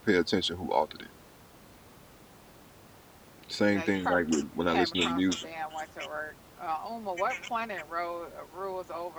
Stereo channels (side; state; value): both; identical; correlation 1.00